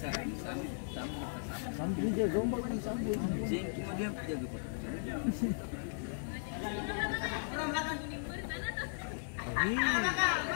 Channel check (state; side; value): silent; right; 53 dB below the other